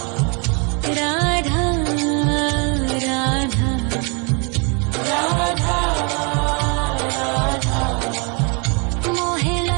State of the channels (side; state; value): left; quieter; 33.8 dB